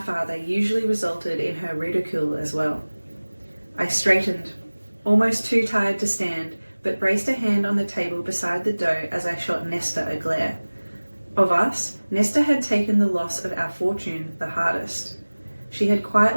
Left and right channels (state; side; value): inverted; both; correlation -1.00